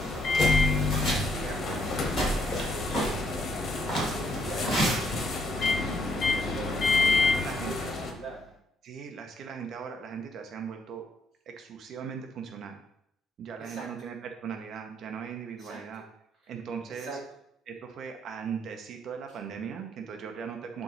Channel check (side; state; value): both; normal; correlation 0.72